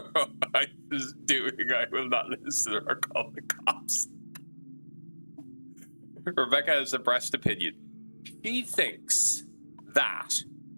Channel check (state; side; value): inverted; both; correlation -1.00